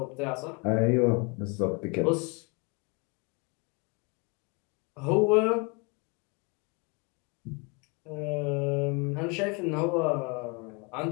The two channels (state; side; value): quieter; right; 30.8 dB